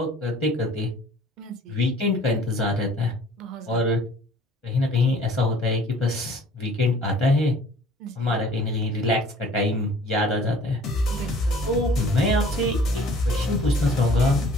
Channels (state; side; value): normal; both; correlation 0.52